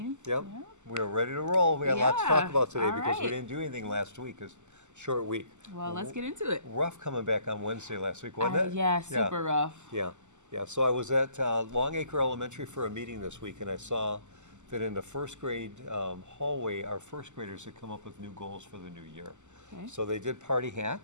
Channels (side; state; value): left; late; 0.84 ms